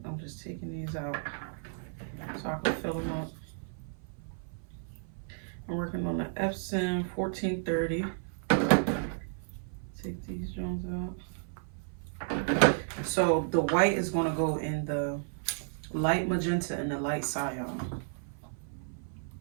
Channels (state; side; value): silent; left; 56 dB below the other